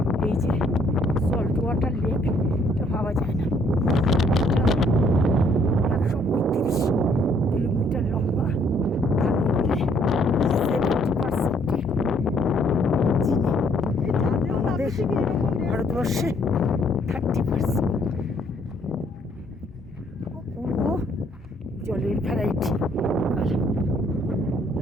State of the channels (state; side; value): normal; both; correlation 0.66